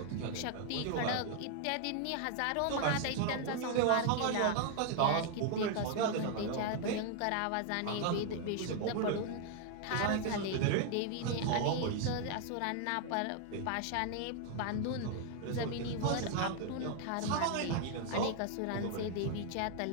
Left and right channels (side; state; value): both; different; correlation 0.00